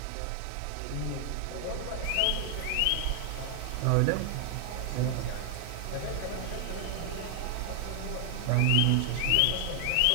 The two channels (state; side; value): different; both; correlation 0.00